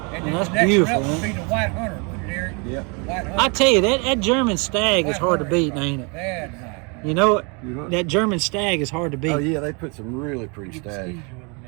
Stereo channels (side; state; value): left; quieter; 32.4 dB